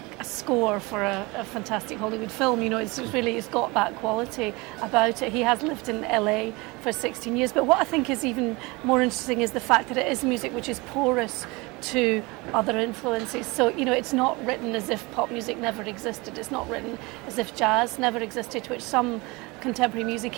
score for a fantastic Hollywood film. You know, it's got that quality about it. He has lived in LA for 16 years, but what I think is even more interesting is the fact that it is music which is porous to other influences. So, you know, it's not written as if pop music never existed. It's not written as if jazz never existed, which some contemporary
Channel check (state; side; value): quieter; left; 24.8 dB